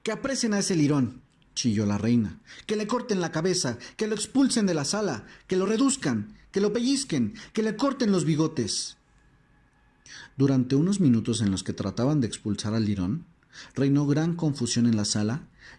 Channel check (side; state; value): both; identical; correlation 1.00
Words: «Que apresen a ese lirón», chilló la reina. «Que le corten la cabeza, que lo expulsen de la sala, que lo reduzcan, que lo pellizquen, que le corten los bigotes». Durante unos minutos en los que trataban de expulsar al lirón, reinó gran confusión en la sala